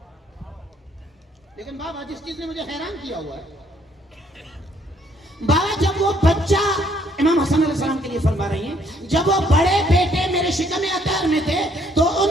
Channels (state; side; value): normal; both; correlation 0.67